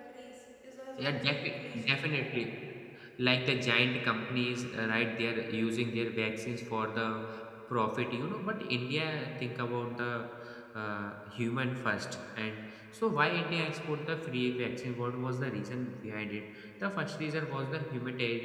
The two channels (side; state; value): both; identical; correlation 1.00